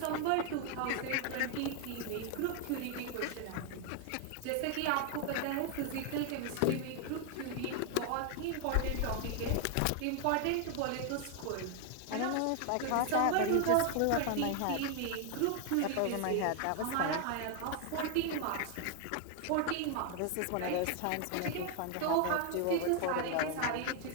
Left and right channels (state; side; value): different; both; correlation 0.01